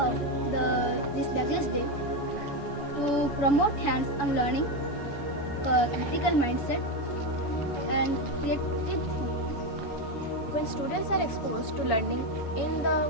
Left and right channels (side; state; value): right; late; 7.0 ms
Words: this Bagless Day to promote hands-on learning, critical mindset, and creative thinking. When students are exposed to learning in